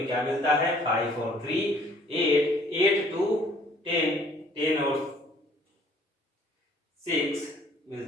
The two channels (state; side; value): normal; both; correlation 0.58